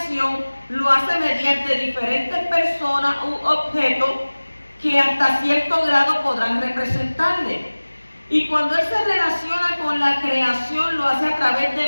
lo hace mediante diferentes personas u objetos que hasta cierto grado podrán representarle. Y cuando Él se relaciona con la creación, lo hace a través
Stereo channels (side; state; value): both; inverted; correlation -1.00